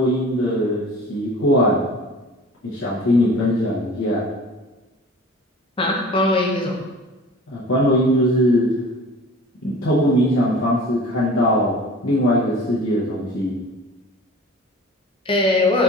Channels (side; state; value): both; normal; correlation 0.42